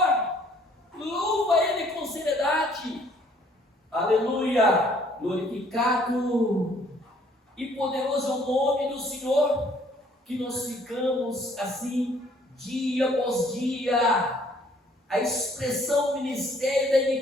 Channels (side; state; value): both; normal; correlation 0.61